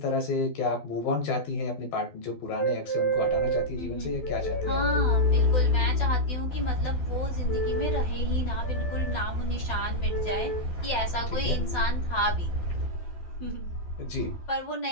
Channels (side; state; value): right; late; 12 ms